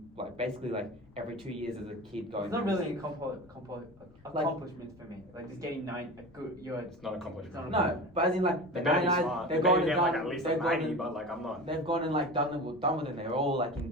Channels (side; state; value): left; noise; rumble, 26 dB below the sound